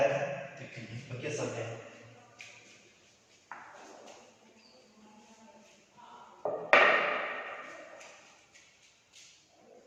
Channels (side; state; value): both; identical; correlation 1.00